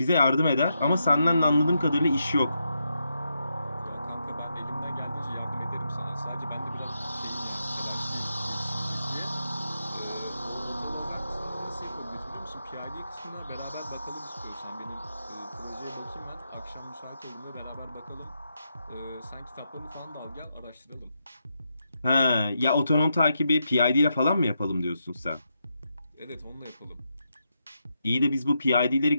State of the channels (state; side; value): inverted; both; correlation -0.83